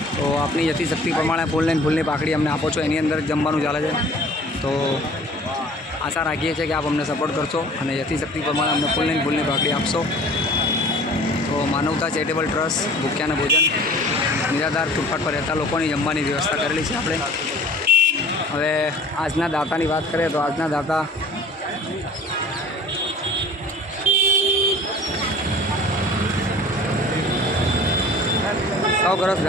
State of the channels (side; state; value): both; normal; correlation 0.46